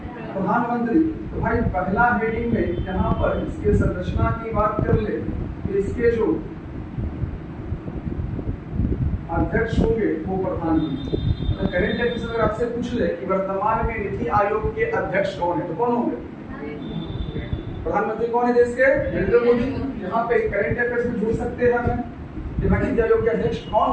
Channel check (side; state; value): both; identical; correlation 1.00